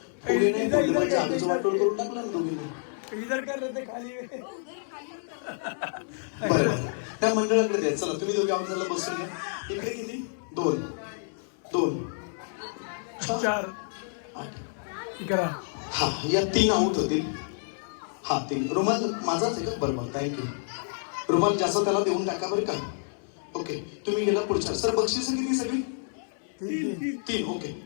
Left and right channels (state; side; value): silent; right; 59 dB below the other